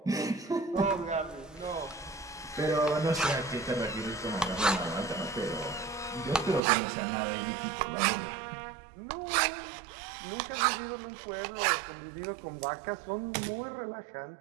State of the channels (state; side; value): drops out; left; at 6.6 s